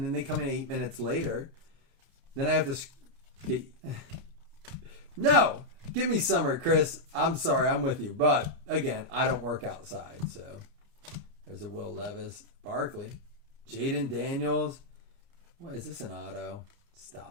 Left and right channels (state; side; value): late; left; 31 ms